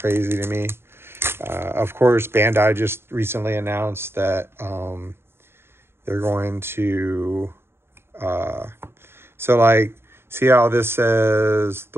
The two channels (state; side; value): late; left; 0.11 ms